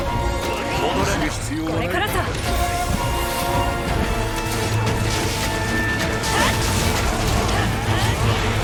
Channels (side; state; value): both; identical; correlation 1.00